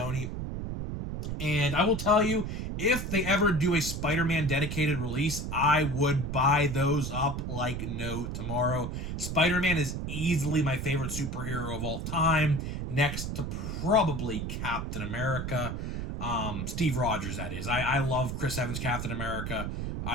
And I will tell you, if they ever do a Spider-Man dedicated release, I would buy those up like no tomorrow. Spider-Man is easily my favorite superhero of all time, next to probably Captain America. Steve Rogers, that is. I love Chris Evans' Captain America.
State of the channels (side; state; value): right; noise; rumble, 4 dB below the sound